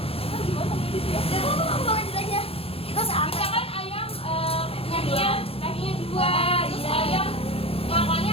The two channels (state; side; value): late; right; 0.28 ms